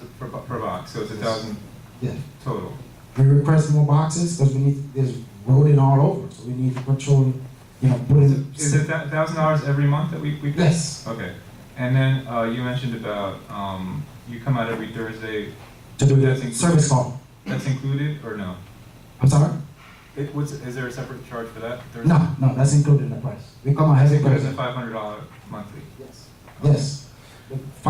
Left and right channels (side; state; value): both; identical; correlation 1.00